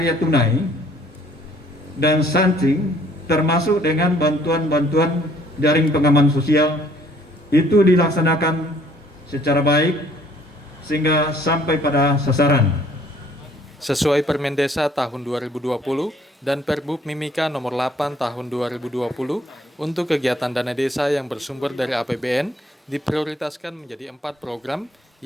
tunai dan stunting, termasuk dengan bantuan-bantuan jaring pengaman sosial, itu dilaksanakan secara baik sehingga sampai pada sasaran. Sesuai Permen Desa tahun 2020 dan Perbub Mimika nomor 8 tahun 2020, untuk kegiatan dana desa yang bersumber dari APBN diprioritaskan menjadi 4 program,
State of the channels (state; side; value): normal; both; correlation 0.60